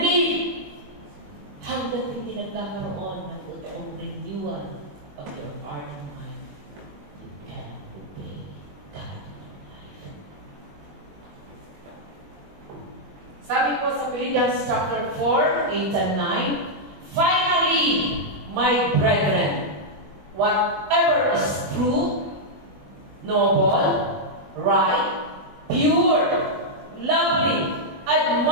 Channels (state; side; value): late; left; 21 ms